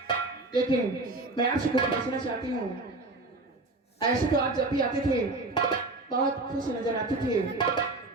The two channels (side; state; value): left; quieter; 3.1 dB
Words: लेकिन मैं आपसे कुछ पूछना चाहती हूँ। ऐसे तो आप जब भी आते थे बहुत खुश नजर आते थे,